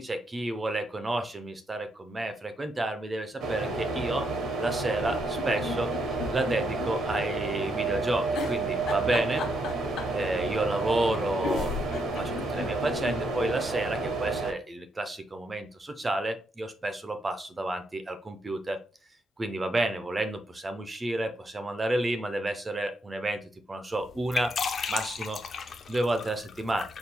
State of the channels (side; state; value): both; normal; correlation 0.78